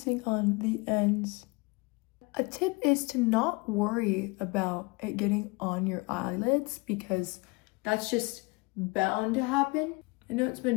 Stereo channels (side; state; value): right; quieter; 26.9 dB